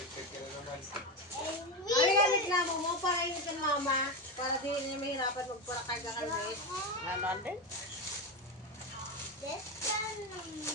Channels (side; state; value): both; normal; correlation 0.15